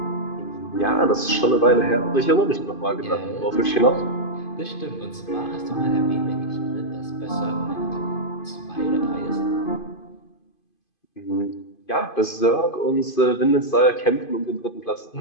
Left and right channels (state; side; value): late; right; 2.5 ms